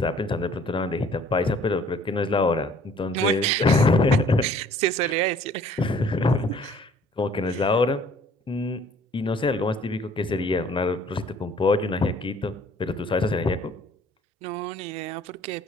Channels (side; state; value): both; normal; correlation 0.56